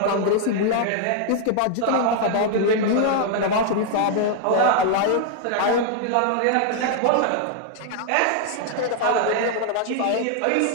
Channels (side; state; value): both; different; correlation 0.00